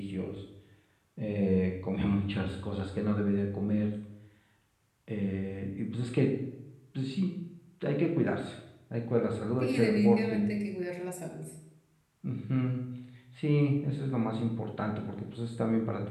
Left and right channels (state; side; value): identical; both; correlation 1.00